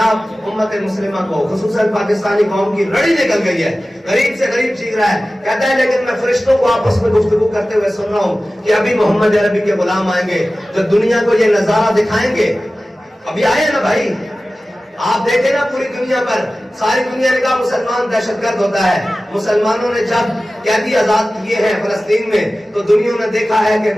امت مسلمہ کو خصوصاً پاکستانی قوم کی رڑی نکل گئی ہے, غریب سے غریب چیخ رہا ہے. کہتا ہے لیکن میں فرشتوں کو آپس میں گفتگو کرتے ہوئے سن رہا ہوں کہ ابھی محمد عربی کے غلام آئیں گے جو دنیا کو یہ نظارہ دکھائیں گے. ابھی آئے نا بھائی, آپ دیکھیں نا پوری دنیا پر, ساری دنیا نے کہا مسلمان دہشت گرد ہوتا ہے. مسلمانوں نے جب قیدی آزاد کیے ہیں فلسطین میں تو دنیا نے دیکھا ہے کہ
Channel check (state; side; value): normal; both; correlation 0.96